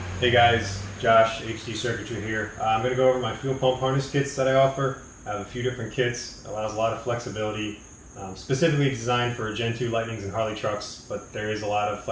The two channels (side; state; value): both; identical; correlation 1.00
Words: Hey guys, Josh, HDCircuitry here. I'm going to go over my fuel pump harness kits that I offer. I have a few different kits, allows a lot of flexibility, specifically designed for Gen 2 Lightnings and Harley trucks, but there is a lot of